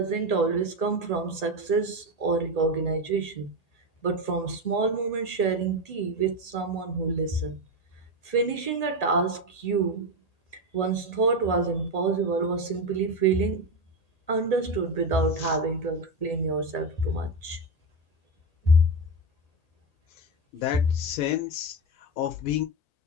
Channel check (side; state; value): right; late; 1.8 ms